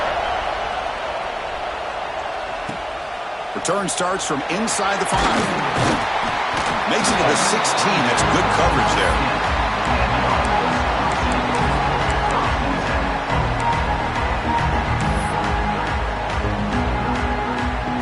Return starts from inside the 5. Makes it to the 16. That's good coverage there.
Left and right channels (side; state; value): both; identical; correlation 1.00